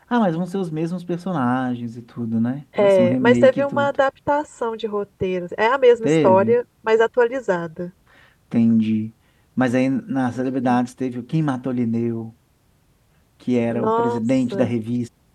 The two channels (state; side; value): identical; both; correlation 1.00